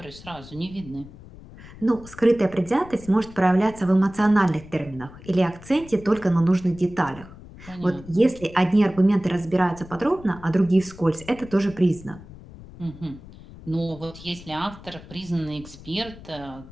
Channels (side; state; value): left; noise; rumble, 18 dB below the sound